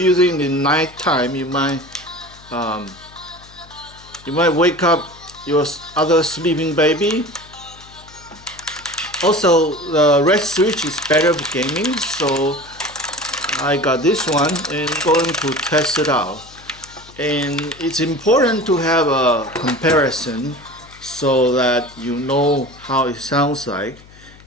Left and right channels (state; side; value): noise; left; hum, 23 dB below the sound